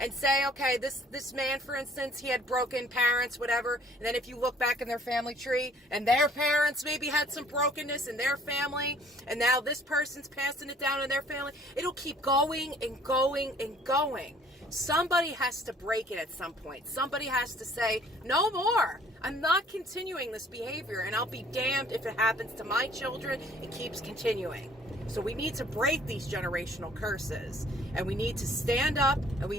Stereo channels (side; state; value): both; normal; correlation 0.57